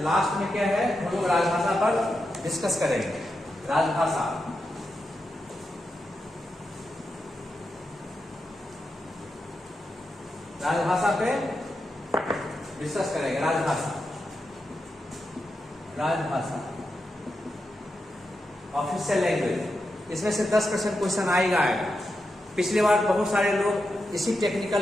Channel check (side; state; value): both; normal; correlation 0.87